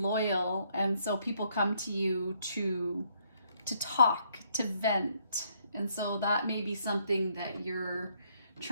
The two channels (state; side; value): inverted; both; correlation -0.70